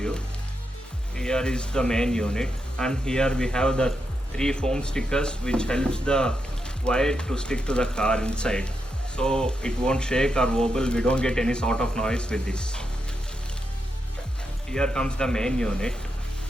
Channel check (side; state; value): both; normal; correlation 0.84